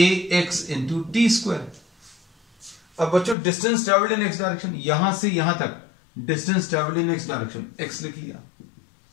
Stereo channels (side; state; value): right; drops out; at 3.4 s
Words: into T square. अब बच्चों distance travelled in x direction, यहां से यहां तक distance travelled in x direction, x लिख लिया,